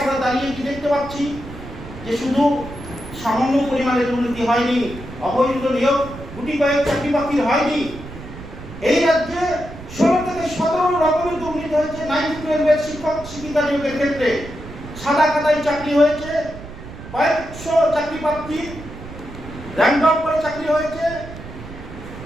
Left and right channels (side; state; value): right; noise; rumble, 13 dB below the sound